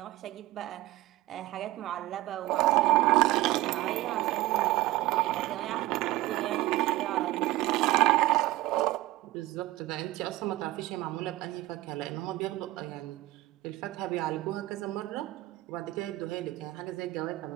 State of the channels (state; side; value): quieter; left; 17.6 dB